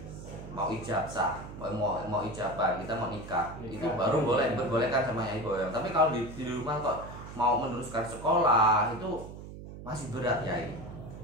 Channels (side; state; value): right; noise; hum, 12 dB below the sound